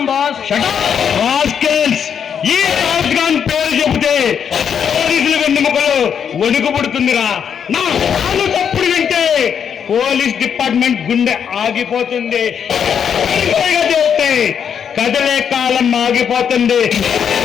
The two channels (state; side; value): quieter; right; 7.7 dB